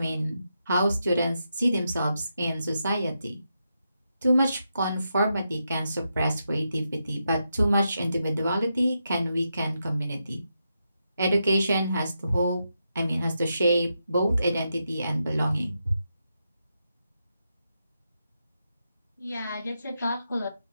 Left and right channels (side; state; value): both; inverted; correlation -0.85